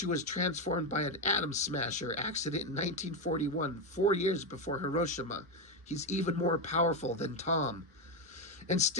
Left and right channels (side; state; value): both; normal; correlation 0.09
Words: was transformed by an atom smasher accident in 1941, 4 years before Hiroshima. He's even more powerful than Tom. And